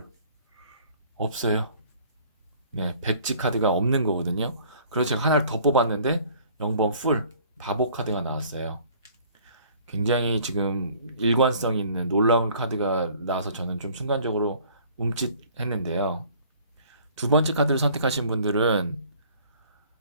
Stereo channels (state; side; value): inverted; both; correlation -0.54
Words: 없어요. 네, 백지 카드가 없는 거거든요. 그래서 제가 하나를 더 뽑았는데 0번 풀 바보 카드가 나왔어요. 굉장히 지금 일관성 있는 놀라운 카드가 나와서 저는 좀 순간적으로 움찔했는데요. 두 번째 카드를 선택하신 분들은